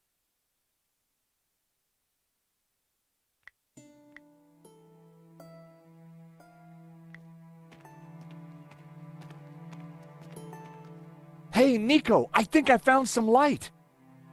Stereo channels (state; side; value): identical; both; correlation 1.00